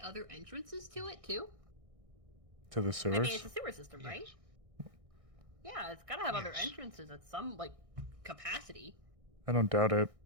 other entrances to it too? to the I sewers. mean, it's a sewer system, right? Yeah, it's gotta have other entrances at some like capacity. I don't doubt it,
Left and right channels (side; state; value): left; late; 1.6 ms